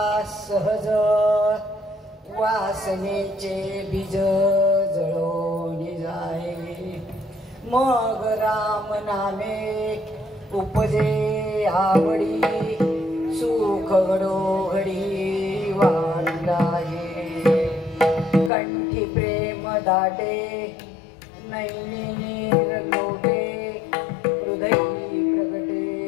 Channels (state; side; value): drops out; right; at 18.5 s